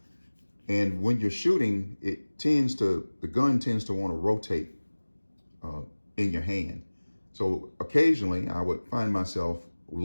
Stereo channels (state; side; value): inverted; both; correlation -1.00